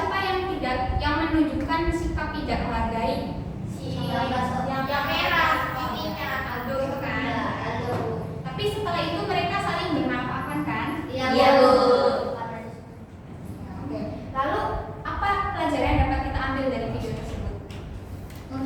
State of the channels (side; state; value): both; identical; correlation 1.00